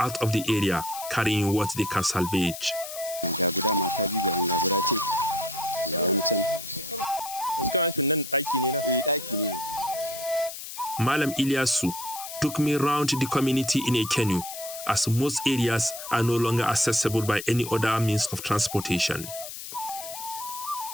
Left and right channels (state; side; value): noise; left; hiss, 10 dB below the sound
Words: of the area, carrying what they can salvage. Malam Ilyasu took me round the community in a canoe, as most areas are no longer accessible by any other means of transportation.